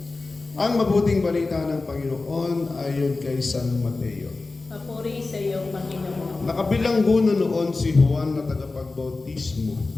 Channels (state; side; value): quieter; right; 3.6 dB